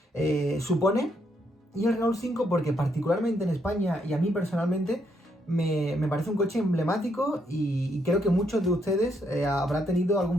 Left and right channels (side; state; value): both; normal; correlation 0.75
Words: supone. Y el Renault 5 porque particularmente en España y a mí personalmente me parece un coche emblemático y creo que muchos de ustedes habrán tenido